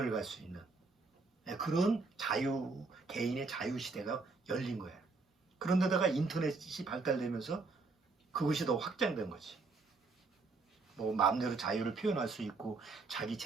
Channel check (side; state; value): left; quieter; 3.9 dB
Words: 갈 수 있는 그런 개인의 자유 시대가 열린 거예요. 그런데다가 인터넷이 발달되면서 그것이 더 확장된 거지. 뭐 마음대로 자유를 표현할 수 있고 자기